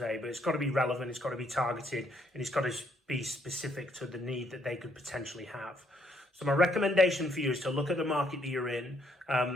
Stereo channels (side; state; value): both; normal; correlation 0.70